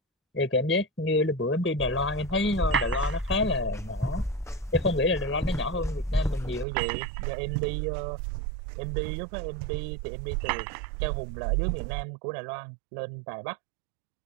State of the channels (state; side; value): drops out; left; at 6.7 s